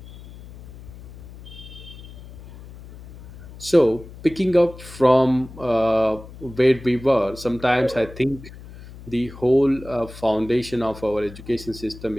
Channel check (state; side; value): noise; left; hum, 17 dB below the sound